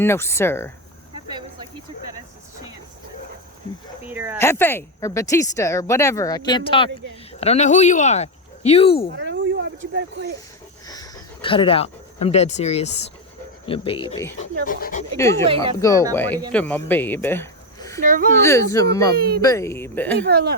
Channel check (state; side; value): normal; both; correlation 0.09